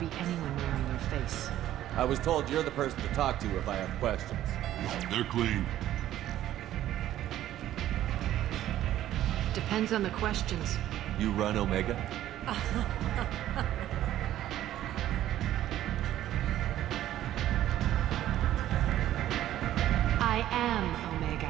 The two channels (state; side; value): quieter; left; 12.9 dB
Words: anyone wearing your face. I was told you're the person to talk to if I have questions. They're clean. Depends on the questions. You run Omega? I am